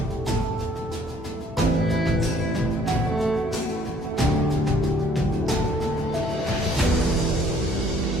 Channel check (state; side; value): normal; both; correlation 0.61